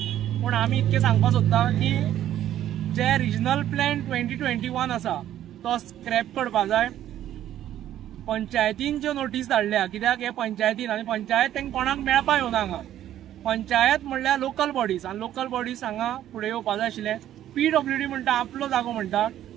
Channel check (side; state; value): left; quieter; 11.9 dB